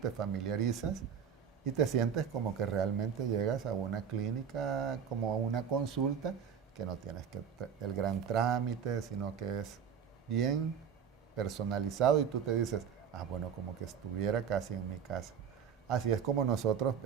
familiarizas y te sientes como que realmente llegas a una clínica, como a una consulta, que no tienes que el gran trámite, sino que es bien personalizado y tú te dices, bueno, como que estuviera casi en mi casa. Así es como nosotros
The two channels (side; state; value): left; quieter; 7.5 dB